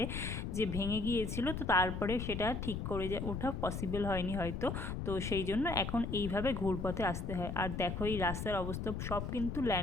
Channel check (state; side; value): noise; left; rumble, 4 dB below the sound